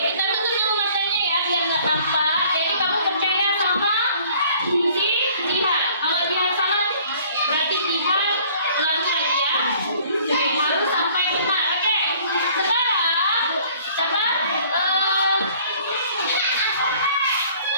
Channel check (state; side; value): inverted; both; correlation -0.55